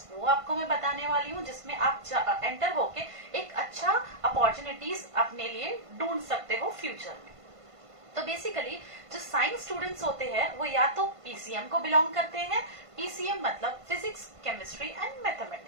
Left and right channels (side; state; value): left; late; 1.5 ms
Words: वो आपको मैं बताने वाली हूँ, जिसमें आप एंटर होके एक अच्छा अपॉर्चुनिटीज अपने लिए ढूंढ सकते हो फ्यूचर में. तो बेसिकली जो साइंस स्टूडेंट्स होते हैं वो या तो पीसीएम को बिलोंग करते हैं, पीसीएम मतलब फिजिक्स, केमिस्ट्री एंड